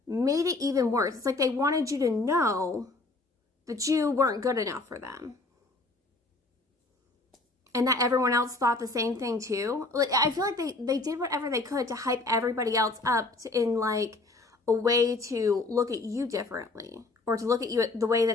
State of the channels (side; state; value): right; quieter; 3.2 dB